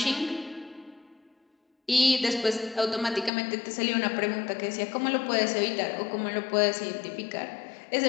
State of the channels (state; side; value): drops out; right; at 3.3 s